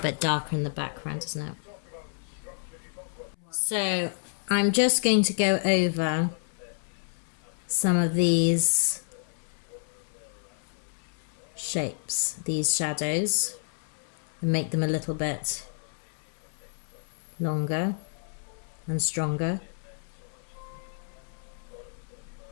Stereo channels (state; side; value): silent; right; 58 dB below the other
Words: darker in the background, isn't it? So I'm just going to go over some of these shapes, these shadows, and make them a little bit longer and stronger.